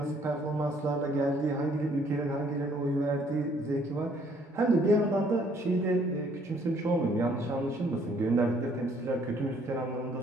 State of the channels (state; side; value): normal; both; correlation 0.63